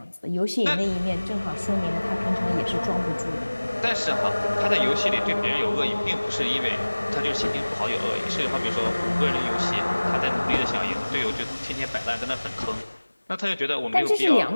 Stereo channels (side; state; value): both; inverted; correlation -1.00